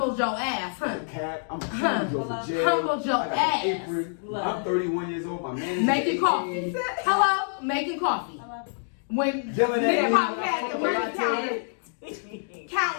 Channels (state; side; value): silent; right; digital silence